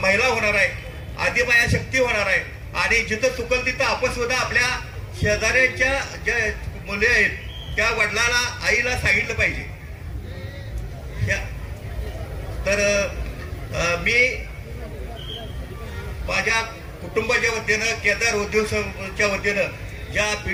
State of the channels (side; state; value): both; identical; correlation 1.00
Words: महिला होणार आहे, आदिमाया शक्ती होणार आहे. आणि जिथं चुकल तिथं आपण सुद्धा आपल्या शेजाऱ्यांच्या ज्या मुले आहेत त्या वडिलाला आईला सांगितलं पाहिजे. तर मी माझ्या कुटुंबाच्या वतीनं, केदार उद्योगच्या वतीनं ज्या